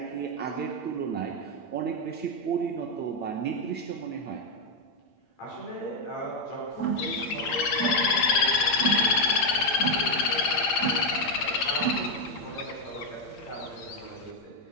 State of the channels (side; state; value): right; late; 8.8 ms